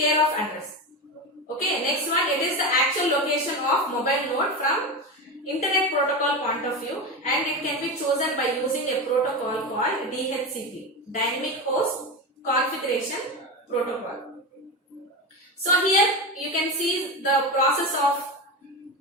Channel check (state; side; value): normal; both; correlation 0.20